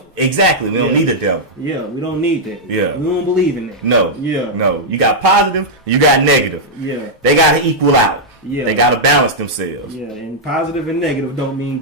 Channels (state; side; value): normal; both; correlation -0.05